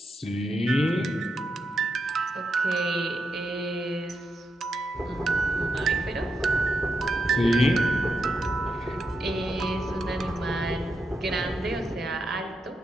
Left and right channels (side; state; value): both; normal; correlation 0.84